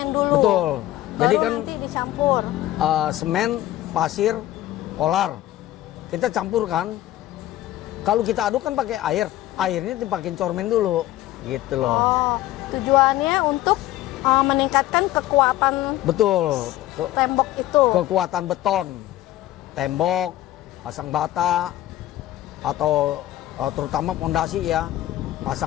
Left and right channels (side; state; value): right; quieter; 14.8 dB